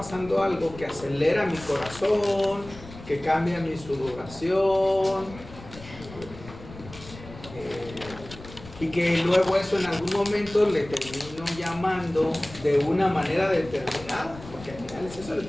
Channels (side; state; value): left; noise; rumble, 16 dB below the sound